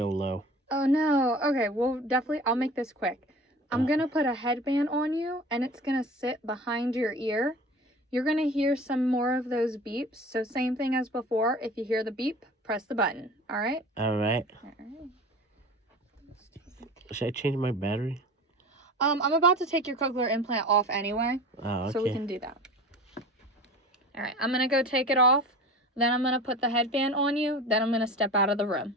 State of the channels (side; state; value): both; normal; correlation 0.38